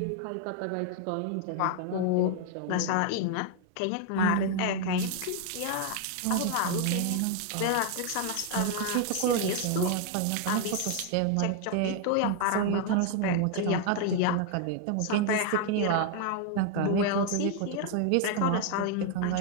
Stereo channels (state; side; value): different; both; correlation 0.00